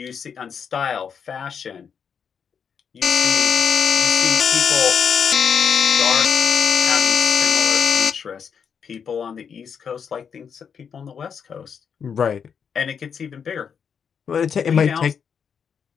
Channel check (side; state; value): right; quieter; 7.0 dB